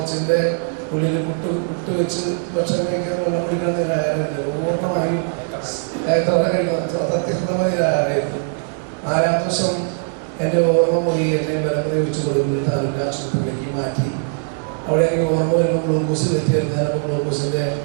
ഉള്ളിൽ പുട്ട് വെച്ച് ഭക്ഷണം കഴിക്കാൻ വെള്ളം പിടിക്കാൻ നിരാഹാരമില്ല. പൂർണ്ണമായും സത്യസന്ധമായ നിരാഹാരമായിരുന്നു. 4-ാമത്തെ ദിവസം എൻ്റെ ഓർമ്മ പോയി. എന്നെ ബലം പ്രയോഗിച്ച് കൊടുക്കുന്നത് താലൂക്ക് ആശുപത്രിയിലേക്ക് മാറ്റി. അവിടെ എനിക്ക് ഓർമ്മ വരുമ്പോൾ ഗ്ലൂക്കോസ് കയറ്റിയായിരുന്നു. ഞാനപ്പോൾ ഗ്ലൂക്കോസിൻ്റെ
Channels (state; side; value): silent; left; 62 dB below the other